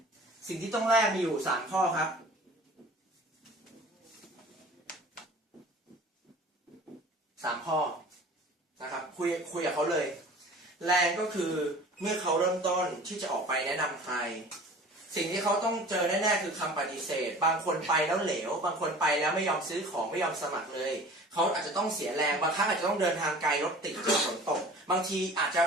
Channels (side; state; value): both; normal; correlation 0.43